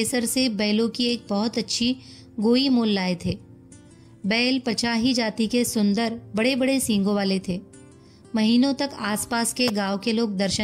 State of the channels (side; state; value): both; identical; correlation 1.00